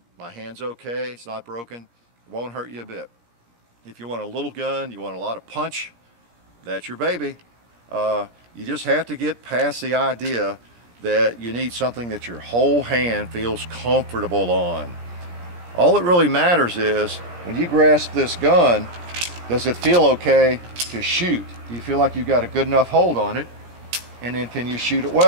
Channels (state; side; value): late; left; 17 ms